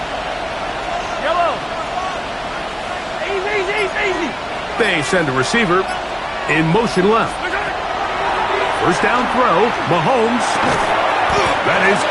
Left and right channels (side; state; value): both; identical; correlation 1.00